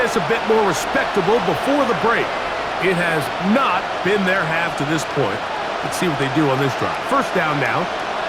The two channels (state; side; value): identical; both; correlation 1.00